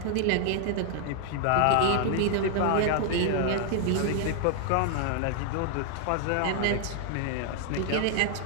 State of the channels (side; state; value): both; different; correlation 0.00